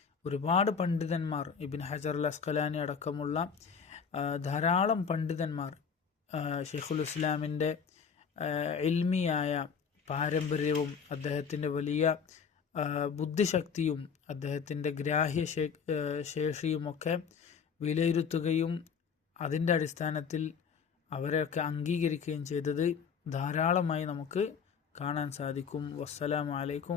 ഒരുപാട് പണ്ഡിതന്മാർ, ഇബ്നു ഹജർ അൽ അസ്ഖലാനി അടക്കമുള്ള ധാരാളം പണ്ഡിതന്മാർ ഷെയ്ഖുൽ ഇസ്ലാമിൻ്റെ ഇൽമിയായ പാരമ്പര്യവും അദ്ദേഹത്തിൻ്റെ വലിയ ബുദ്ധിശക്തിയും അദ്ദേഹത്തിൻ്റെ ഗ്രാഹ്യ ശേഷിയുമൊക്കെ വിലയിരുത്തുകയും അതിൻ്റെ അടിസ്ഥാനത്തിൽ അവരെയൊക്കെ അംഗീകരിക്കുകയും ചെയ്തത് ധാരാളമായി നമുക്ക് കാണാൻ സാധിക്കും. വസ്സലാമു അലൈക്കും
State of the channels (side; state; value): right; quieter; 6.4 dB